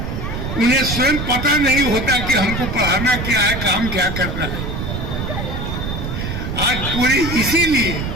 उन्हें स्वयं पता नहीं होता कि हमको पढ़ाना क्या है, काम क्या करना है। आज पूरे इसीलिए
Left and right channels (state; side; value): noise; right; rumble, 4 dB below the sound